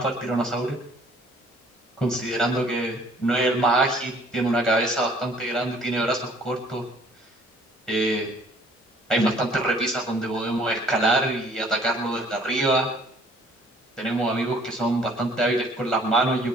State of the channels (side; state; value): both; normal; correlation 0.57